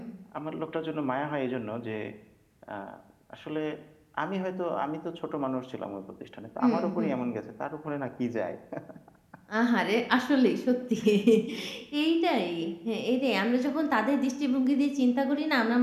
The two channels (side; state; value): both; identical; correlation 1.00